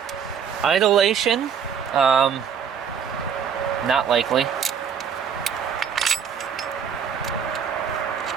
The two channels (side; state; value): left; quieter; 7.5 dB